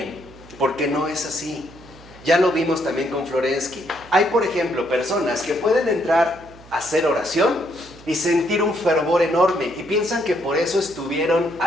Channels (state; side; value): noise; right; hum, 22 dB below the sound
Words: porque no es así. Ya lo vimos también con Florensky. Hay, por ejemplo, personas que pueden entrar a hacer oración y sentir un fervor enorme y piensan que por eso estuvieron